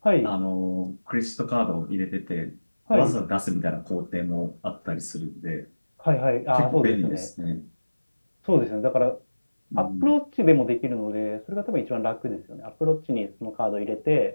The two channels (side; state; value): both; inverted; correlation -1.00